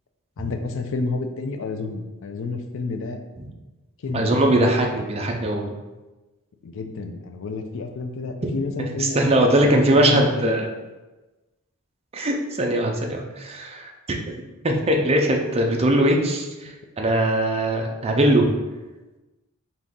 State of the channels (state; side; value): normal; both; correlation 0.43